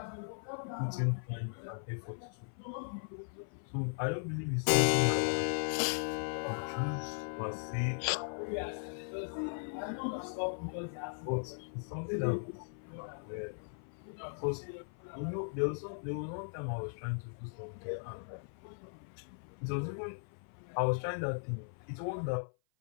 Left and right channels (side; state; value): right; silent; 53 dB below the other